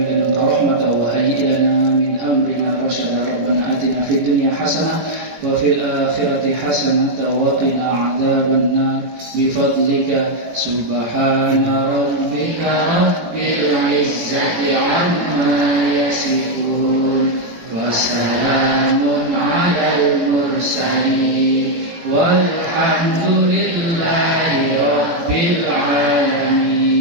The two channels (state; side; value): late; left; 18 ms